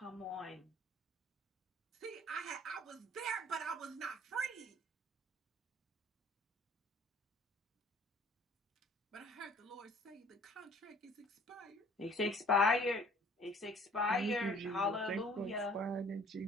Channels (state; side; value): normal; both; correlation 0.54